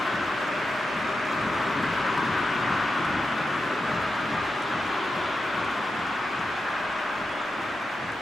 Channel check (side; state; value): both; normal; correlation 0.89